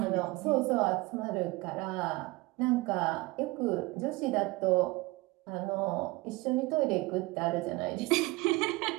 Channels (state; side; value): quieter; left; 22.2 dB